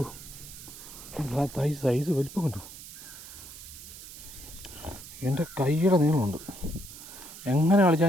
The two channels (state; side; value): noise; right; hiss, 14 dB below the sound